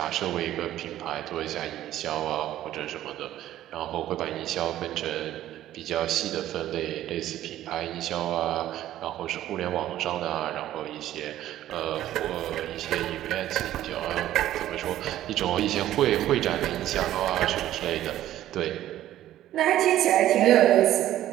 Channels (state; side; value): quieter; left; 13.2 dB